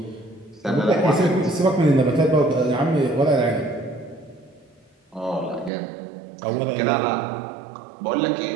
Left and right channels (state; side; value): drops out; left; at 5.7 s